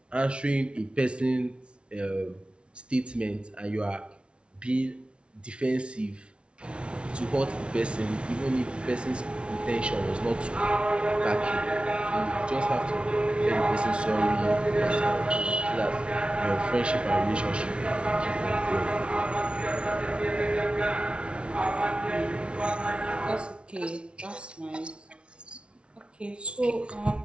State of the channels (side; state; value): left; late; 0.058 ms